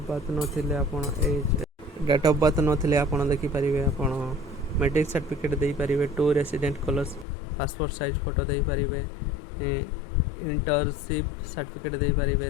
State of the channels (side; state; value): right; drops out; at 7.2 s